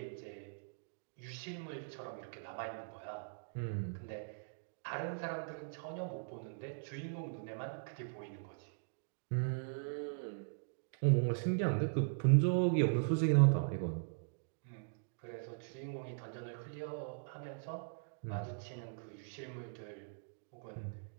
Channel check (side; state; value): left; silent; digital silence